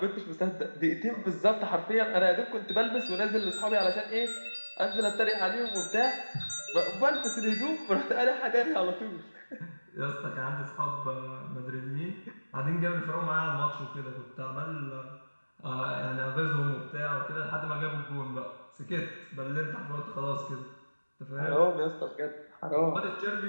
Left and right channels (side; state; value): both; inverted; correlation -1.00